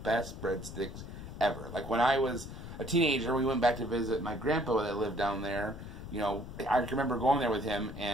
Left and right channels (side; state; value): left; noise; rumble, 10 dB below the sound